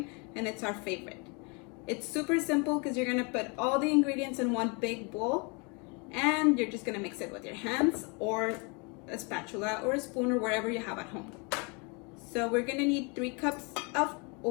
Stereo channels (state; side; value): quieter; right; 32.1 dB